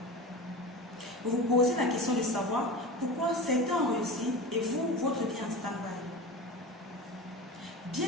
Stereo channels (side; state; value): both; normal; correlation 0.30